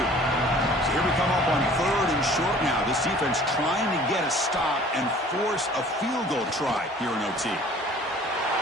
So here we come up on 3rd and short now. This defense trying to get a stop and force a field goal try here in OT.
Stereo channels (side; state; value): both; normal; correlation 0.50